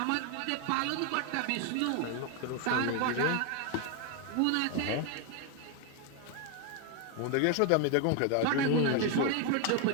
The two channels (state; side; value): different; both; correlation 0.01